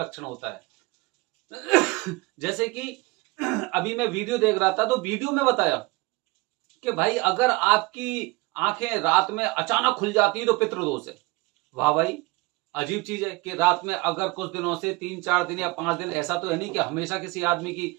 होता है। जैसे कि अभी मैं वीडियो देख रहा था तो वीडियो में बताया कि भाई अगर आपकी आंखें रात में अचानक खुल जाती है तो पितृदोष है। वाह भाई, अजीब चीज है कि रात में अगर कुछ दिनों से 3-4 दिन या 5 दिन, ऐसा तो है नहीं कि हमेशा किसी आदमी की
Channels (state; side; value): quieter; left; 23.8 dB